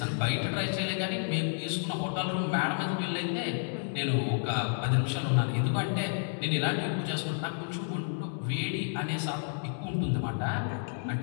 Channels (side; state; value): right; silent; 57 dB below the other